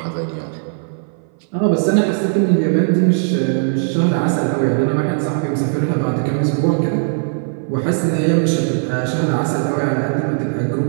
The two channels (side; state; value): left; silent; 60 dB below the other